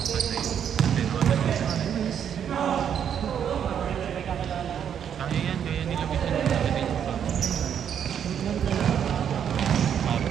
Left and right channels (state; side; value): quieter; left; 8.6 dB